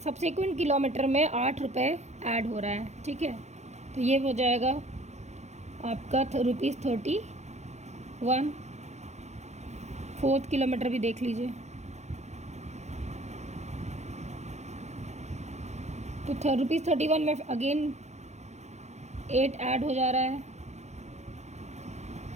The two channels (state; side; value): late; left; 0.33 ms